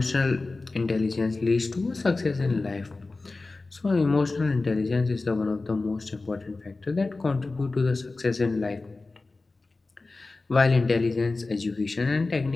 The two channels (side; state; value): right; quieter; 3.5 dB